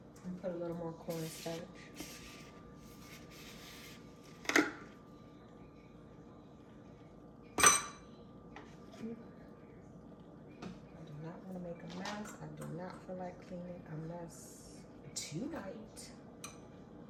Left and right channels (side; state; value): both; identical; correlation 1.00